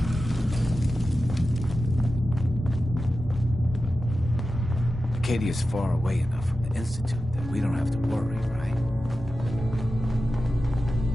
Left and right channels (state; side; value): normal; both; correlation 0.93